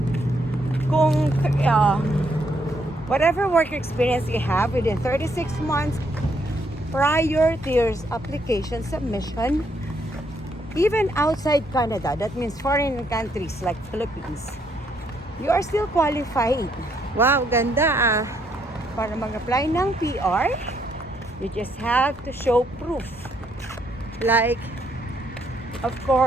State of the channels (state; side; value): normal; both; correlation 0.72